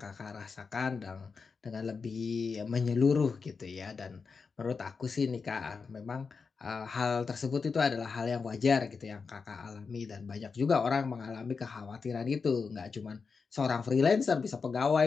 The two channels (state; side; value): quieter; right; 5.1 dB